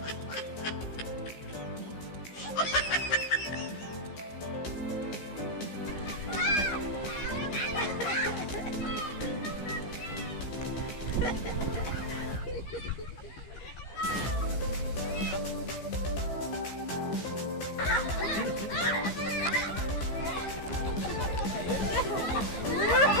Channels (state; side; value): late; right; 15 ms